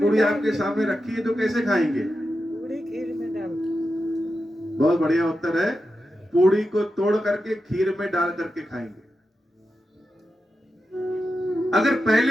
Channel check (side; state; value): both; normal; correlation 0.89